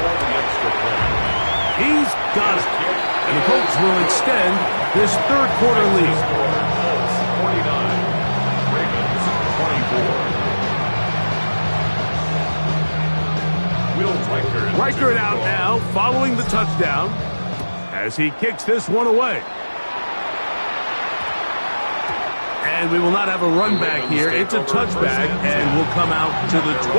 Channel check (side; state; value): both; inverted; correlation -1.00